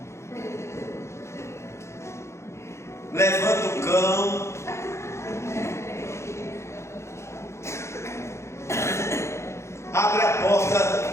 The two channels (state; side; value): late; right; 0.13 ms